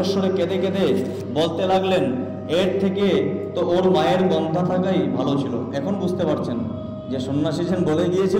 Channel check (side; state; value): both; identical; correlation 1.00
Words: কেঁদে কেঁদে বলতে লাগলেন, এর থেকে তো ওর মায়ের গন্ধা থাকাই ভালো ছিল। এখন বুঝতে পারছেন যে সন্ন্যাসী সেন বলে